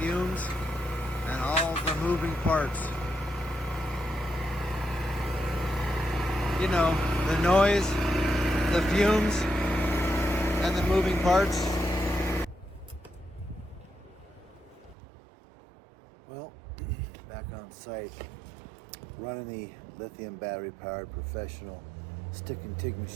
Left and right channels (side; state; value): left; drops out; at 15.0 s